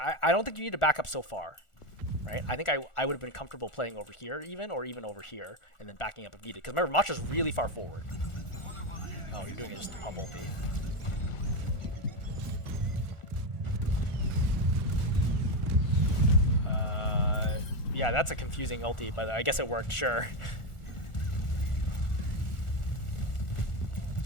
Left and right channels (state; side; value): late; right; 1.4 ms